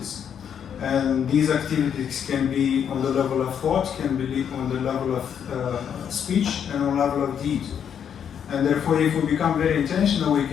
And these activities can be on the level of thought, can be on the level of speech, and on the level of deed. And therefore, if we become very intentional, we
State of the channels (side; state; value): right; quieter; 8.3 dB